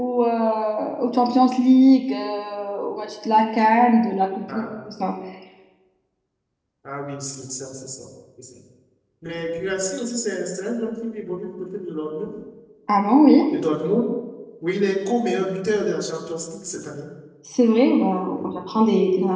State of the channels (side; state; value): both; identical; correlation 1.00